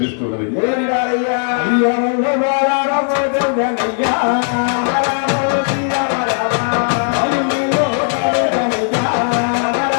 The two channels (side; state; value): right; silent; 55 dB below the other